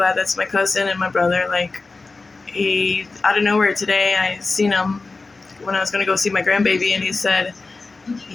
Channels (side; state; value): right; quieter; 3.7 dB